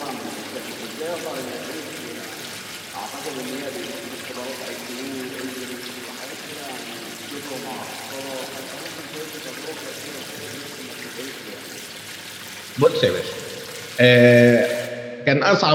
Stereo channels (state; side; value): identical; both; correlation 1.00